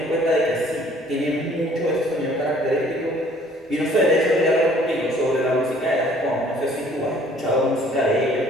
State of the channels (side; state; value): both; normal; correlation 0.57